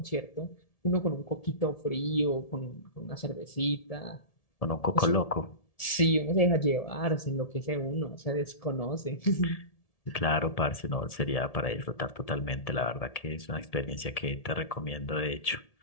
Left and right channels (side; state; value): right; late; 1.7 ms